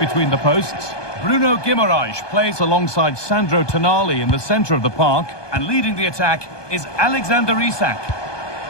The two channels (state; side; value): late; right; 1.2 ms